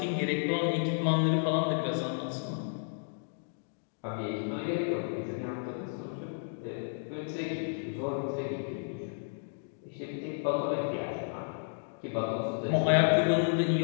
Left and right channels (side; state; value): right; silent; digital silence